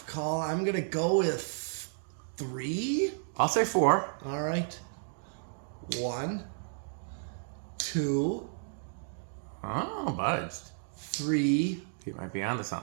call. I'm going to go with 3. I'll say 4. All right. 1, 2. Oh, budged. 3. He might be onto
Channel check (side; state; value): left; silent; digital silence